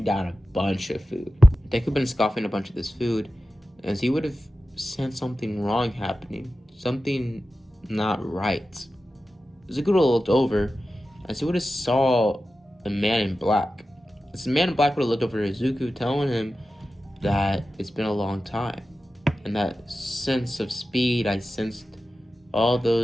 down a bunch of food. Deku been scoffing a bunch of this food as he would have sensed something wrong happening, something not right. Izuku would have looked over as he would have saw a man in black. This man in black would have looked over at Izuku, telling him that it's been a long time, and that sense of speed I sensed all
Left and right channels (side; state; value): both; normal; correlation 0.93